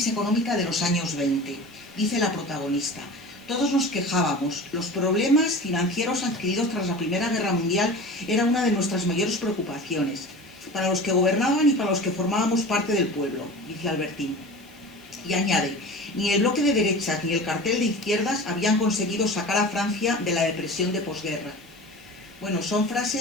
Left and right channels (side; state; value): right; noise; hiss, 28 dB below the sound